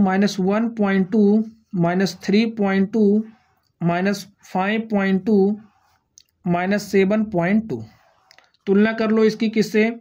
-3.2 -5.2 -7.2। तुलना कर लो इसकी किससे,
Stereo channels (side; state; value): both; identical; correlation 1.00